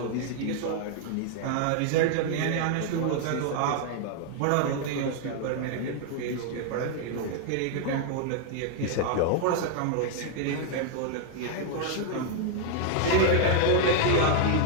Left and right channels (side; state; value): both; different; correlation 0.00